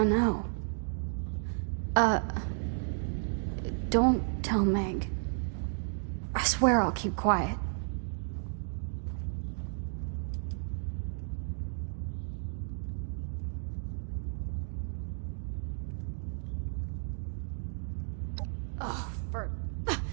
know. Don't tell Meg. I swear I'll keep quiet. Oh, for...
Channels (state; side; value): silent; left; 56 dB below the other